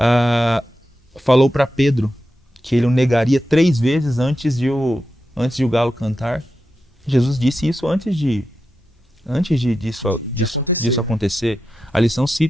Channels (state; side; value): normal; both; correlation 0.90